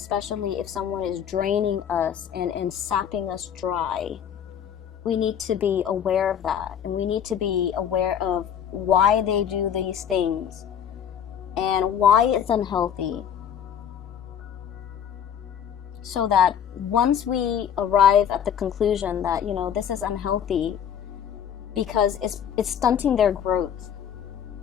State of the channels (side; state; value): right; quieter; 8.7 dB